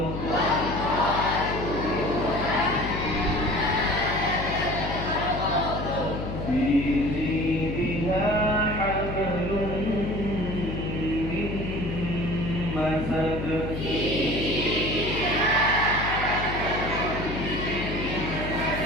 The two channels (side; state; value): left; noise; hum, 5 dB below the sound